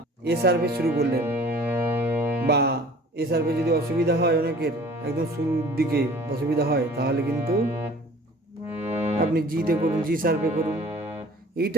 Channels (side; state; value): both; normal; correlation 0.48